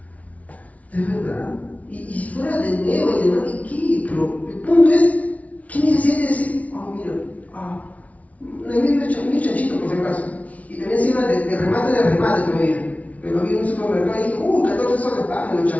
Es verdad. Y si fuera de nuevo y de nuevo, ¿qué? Pero el punto es, ¿qué necesidad de decir? Mira, mi chanchito por si acaso. Y también encima de remate todavía. Que lo vi en un supermercado y dije, 14 soles, me lo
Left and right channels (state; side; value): late; right; 0.068 ms